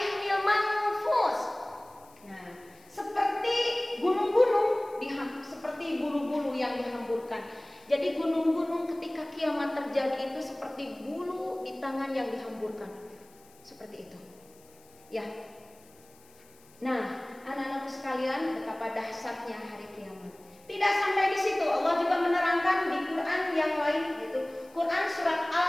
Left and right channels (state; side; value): noise; left; hiss, 27 dB below the sound